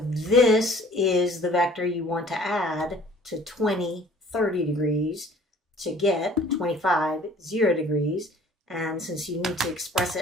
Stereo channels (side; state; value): both; normal; correlation 0.52